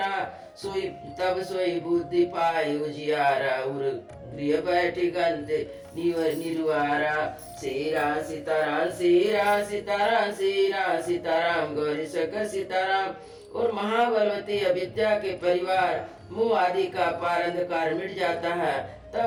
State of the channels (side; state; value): both; identical; correlation 1.00